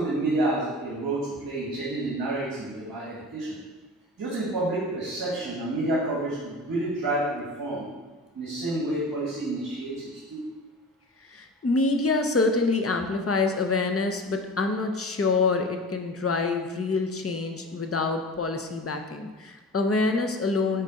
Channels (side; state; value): both; normal; correlation 0.36